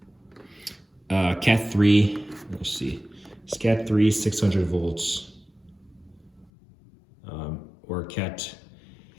Cat 3, let's see, it's Cat 3 600 volts, or Cat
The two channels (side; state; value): right; drops out; at 6.5 s